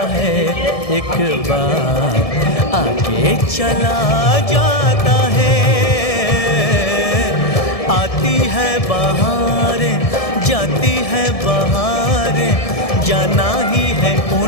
है एक बार, आगे चला जाता है। आती है बहारें जाती है बहारें, जाना ही है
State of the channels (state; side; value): late; right; 1.7 ms